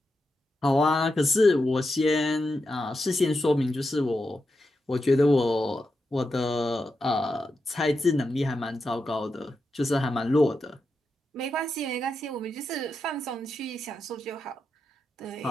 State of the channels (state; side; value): normal; both; correlation 0.87